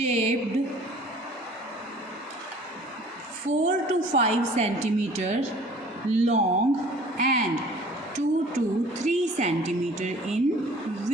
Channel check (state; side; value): normal; both; correlation 0.50